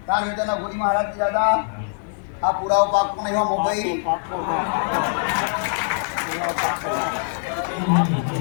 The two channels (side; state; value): right; silent; 64 dB below the other